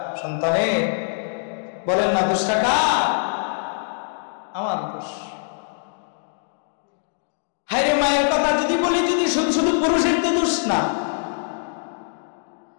সন্তানের, বলেন না 10 টাকা আমার দোষ। হায়রে মায়ের কথা যদি বলি, যদি শুধু শুধু পুরুষের তো দোষ না,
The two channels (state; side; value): silent; right; digital silence